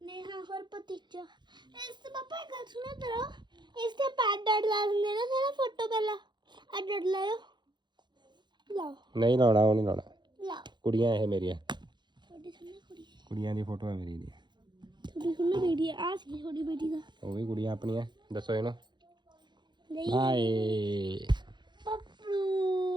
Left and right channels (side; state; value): left; late; 0.22 ms